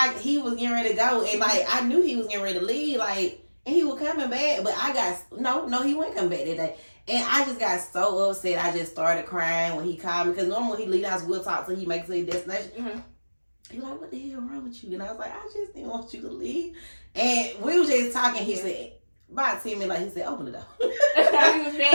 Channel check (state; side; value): inverted; both; correlation -1.00